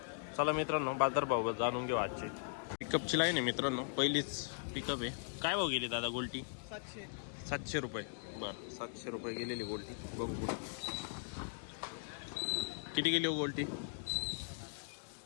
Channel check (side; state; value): right; silent; digital silence